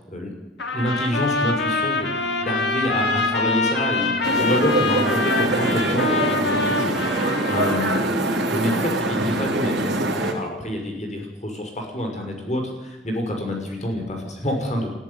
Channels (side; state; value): both; normal; correlation 0.33